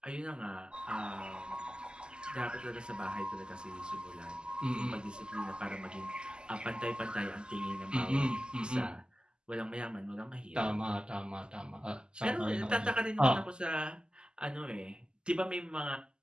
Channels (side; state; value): left; late; 0.047 ms